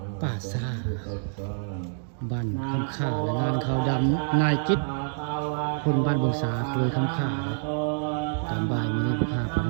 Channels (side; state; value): left; silent; digital silence